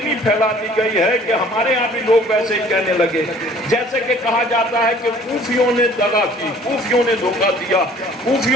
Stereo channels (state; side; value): normal; both; correlation 0.53